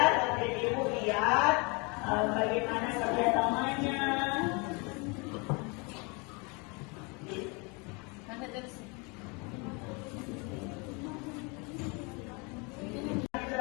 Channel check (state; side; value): quieter; right; 30.3 dB